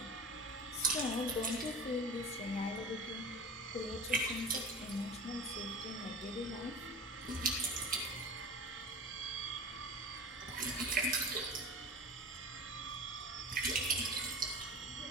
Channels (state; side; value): normal; both; correlation 0.35